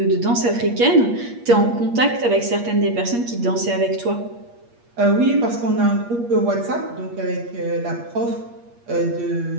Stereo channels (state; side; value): late; left; 8.5 ms